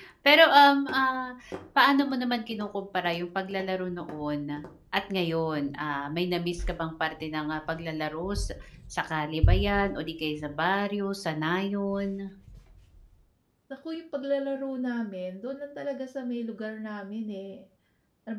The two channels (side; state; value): both; identical; correlation 1.00